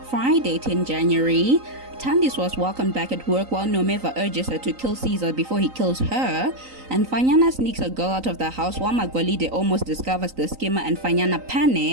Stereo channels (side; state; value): left; late; 3.9 ms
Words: Friday, 10 January. Thandiswa was welcomed back at work while Nomeva urges her to kill Caesar before he kills her, and Fanyana sneaks a girl out of the house while Magolide almost discovers the scammer and Fanyana